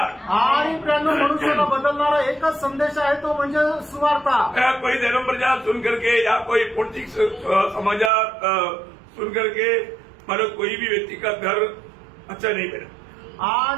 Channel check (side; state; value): left; drops out; at 8.1 s